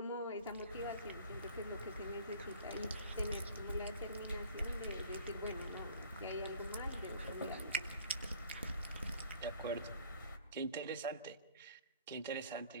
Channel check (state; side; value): inverted; both; correlation -0.51